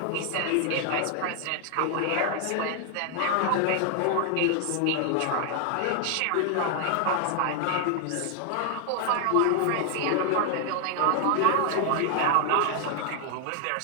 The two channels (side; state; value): both; different; correlation 0.00